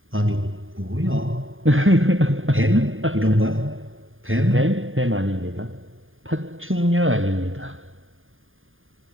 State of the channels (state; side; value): late; left; 0.59 ms